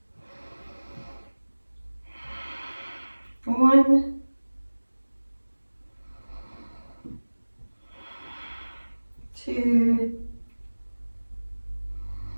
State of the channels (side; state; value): both; inverted; correlation -1.00